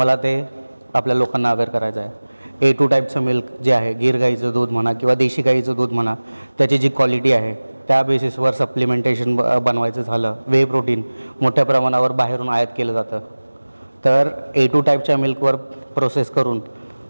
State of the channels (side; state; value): both; inverted; correlation -1.00